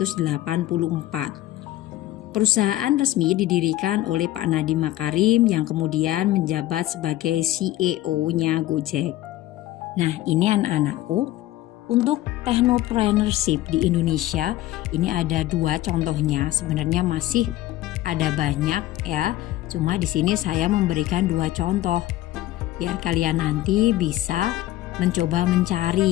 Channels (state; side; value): quieter; right; 15.3 dB